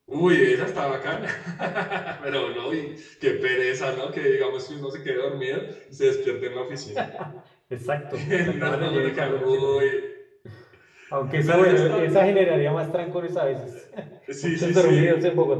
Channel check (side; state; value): both; identical; correlation 1.00